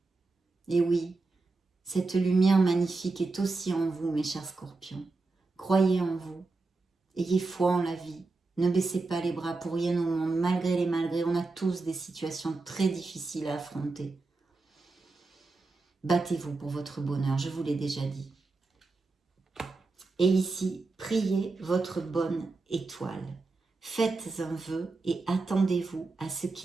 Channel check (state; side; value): quieter; left; 3.7 dB